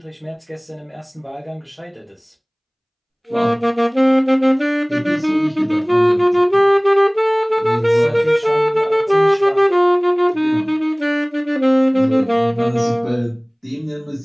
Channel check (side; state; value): both; identical; correlation 1.00